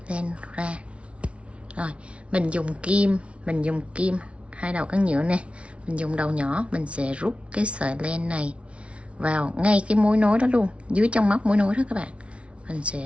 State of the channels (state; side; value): late; left; 0.061 ms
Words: len ra. Rồi mình dùng kim hai đầu cán nhựa nè, mình dùng đầu nhỏ, mình sẽ rút cái sợi len này vào ngay cái mối nối đó luôn, dưới trong móc mối nối đó các bạn. Mình